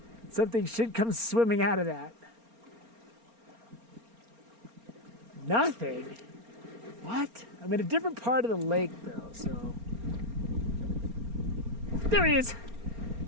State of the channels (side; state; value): left; late; 4.3 ms